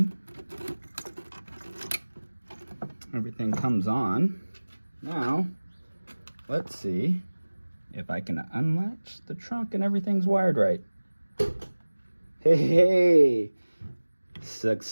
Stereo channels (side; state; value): both; inverted; correlation -1.00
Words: everything comes on. Now, let's see if I can unlatch the trunk and everything's wired right. Hey,